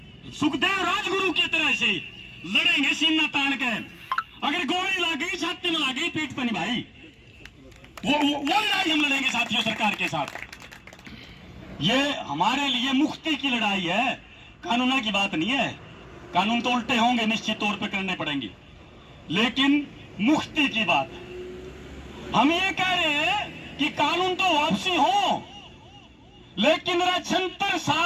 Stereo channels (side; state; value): both; identical; correlation 1.00